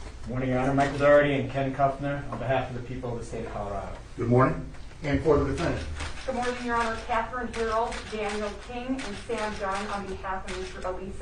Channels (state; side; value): identical; both; correlation 1.00